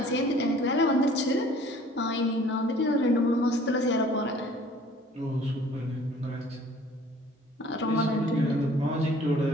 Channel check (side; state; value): both; normal; correlation 0.52